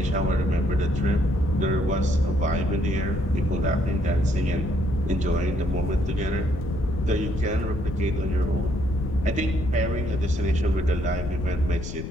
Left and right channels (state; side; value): noise; left; rumble, 7 dB below the sound